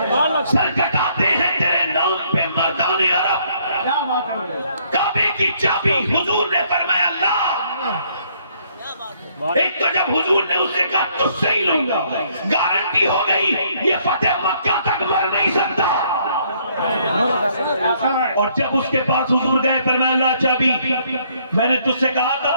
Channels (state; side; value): inverted; both; correlation -0.67